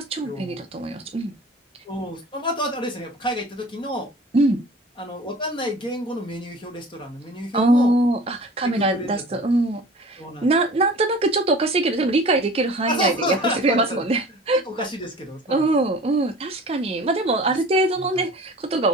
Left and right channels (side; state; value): both; normal; correlation 0.42